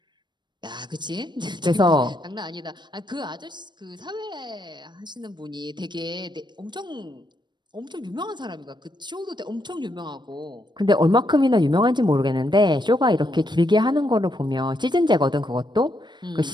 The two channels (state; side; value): late; left; 0.22 ms